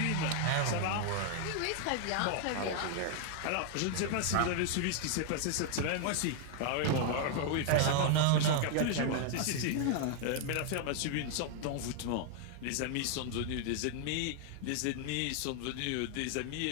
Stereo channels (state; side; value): different; both; correlation 0.00